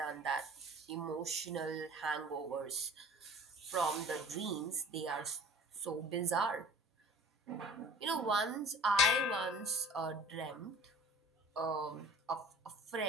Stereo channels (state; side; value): normal; both; correlation 0.45